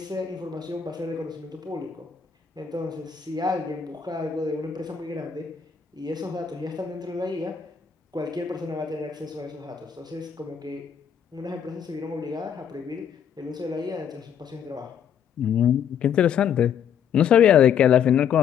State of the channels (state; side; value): quieter; right; 8.0 dB